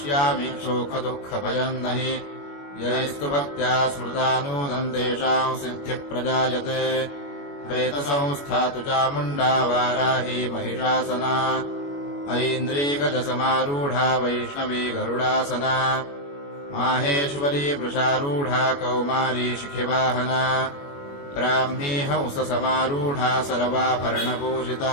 शोकदुःखभयम् न हि यैस्तु भक्त्या स्मृता नूनम् तेषाम् सिद्धिः प्रजायते। प्रेतसंस्था तु चामुण्डा वाराही महिषासना ऐन्द्रीगजसमारूढा वैष्णवी गरुडासना माहेश्वरी वृषारूढा कौमारी शिखिवाहना ब्राह्मी हंससमारूढा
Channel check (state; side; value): late; right; 21 ms